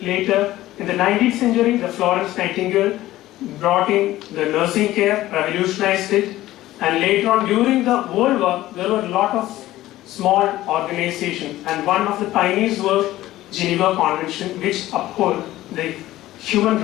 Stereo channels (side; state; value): right; quieter; 15.6 dB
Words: Later, in the 19th century, the Florence Nightingale brought in the nursing care, revolutionized it, and later on during the World War, there were a lot of small organizations, and one of the pioneers was Geneva Convention, which uphold the human